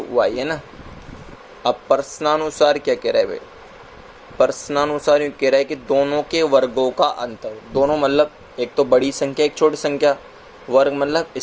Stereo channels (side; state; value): both; identical; correlation 1.00